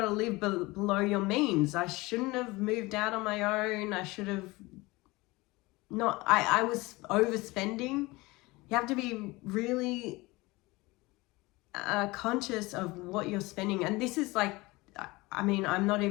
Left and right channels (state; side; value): quieter; right; 22.2 dB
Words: live below your means. I shouldn't have moved out on my own. I should have not, I was overspending. You have to be really conscious of what you're spending. And this is like, I mean, I'm not